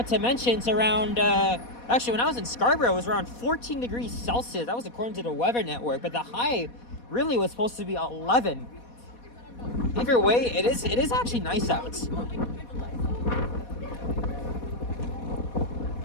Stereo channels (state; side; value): late; right; 4.2 ms